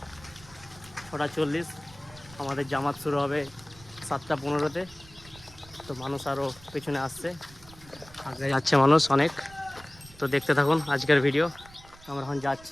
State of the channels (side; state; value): right; noise; rumble, 22 dB below the sound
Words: 6:40। আমাদের জামাত শুরু হবে 7:15-তে। তো মানুষ আরও পেছনে আসছে, আগে যাচ্ছে মানুষ অনেক। তো দেখতে থাকুন আজকের ভিডিও। আমরা এখন